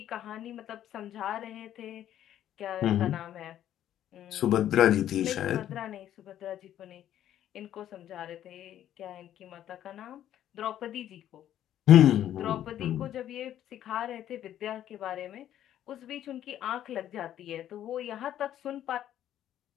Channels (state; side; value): quieter; right; 11.4 dB